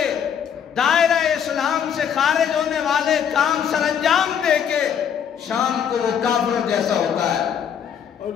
دائرہ اسلام سے خارج ہونے والے کام سر انجام دے کے، شام کو وہ کافر جیسا ہوتا ہے.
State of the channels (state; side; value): quieter; right; 8.2 dB